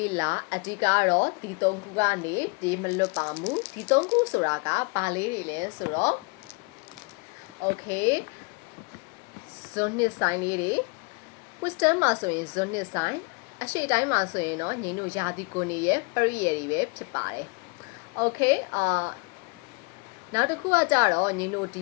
အဓိကတော့ဒီသုံးခုကနေပြေးမလွတ်ပါဘူးဒီသုံးခုဆိုတာကဘာလေးတွေလဲဆိုတော့ okay ဇွန်နှစ်ဆိုင်လေးတွေ wisdom မှာဆိုရင်ဇွန်နှစ်ဆိုင်အရှိတိုင်းမှာဆိုရင်တော့ညီတို့ယာတိကိုနေရဲ့ပရိယေတွေပဲဖြစ်ပါတယ် okay နောက်တစ်ခုကကြတော့ညီတို့ဒီ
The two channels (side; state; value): right; quieter; 31.8 dB